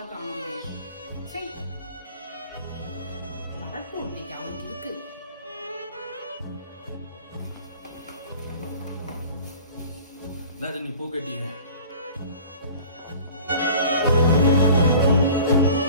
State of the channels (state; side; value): inverted; both; correlation -0.45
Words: காணுமே. சரி வரட்டும், இன்னைக்கு அவனுக்கு இருக்கு. நீ பூ கட்டிங்க.